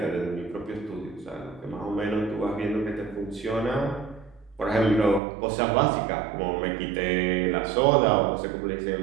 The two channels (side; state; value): left; drops out; at 5.2 s